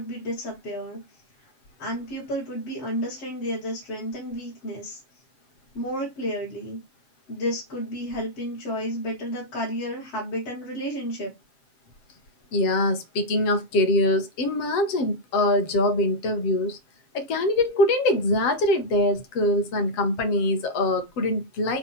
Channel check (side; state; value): right; late; 7.4 ms